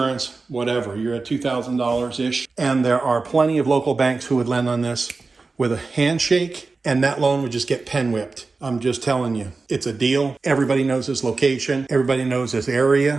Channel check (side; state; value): left; quieter; 3.9 dB